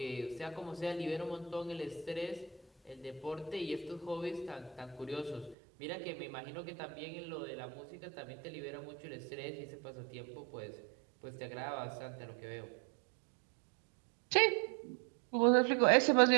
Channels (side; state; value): left; drops out; at 5.6 s